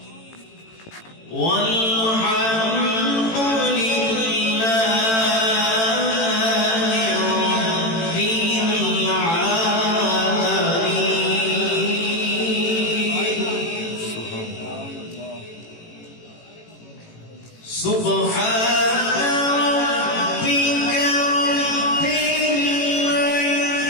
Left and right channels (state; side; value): late; right; 18 ms